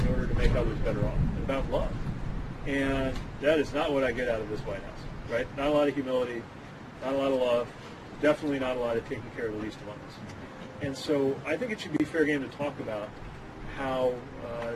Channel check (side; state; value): both; identical; correlation 1.00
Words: in order to make others better off, and about love. And that is not what I get out of this White House, right? Not a lot of humility, not a lot of love, definitely not a lot of taking care of the least among us. And so I think it should be fair game to talk about how